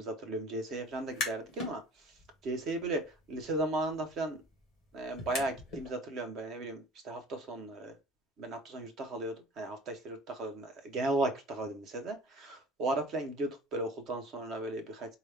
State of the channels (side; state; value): both; normal; correlation 0.44